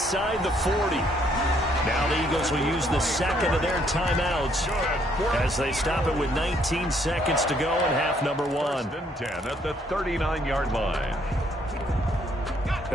the 40. Now the Eagles will use the second of their timeouts as they stop it with 19 seconds to go in half number 1. 1st and 10 at the 39-yard line.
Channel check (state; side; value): normal; both; correlation 0.68